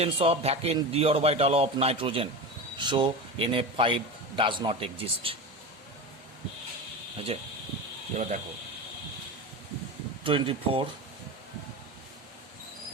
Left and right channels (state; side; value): normal; both; correlation 0.25